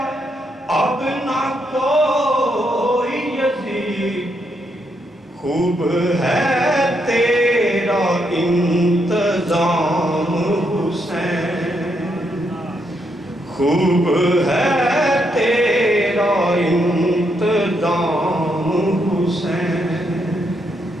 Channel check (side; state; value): both; normal; correlation 0.78